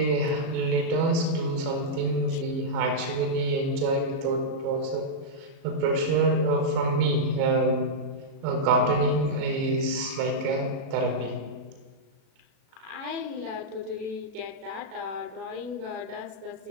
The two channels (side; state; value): left; late; 37 ms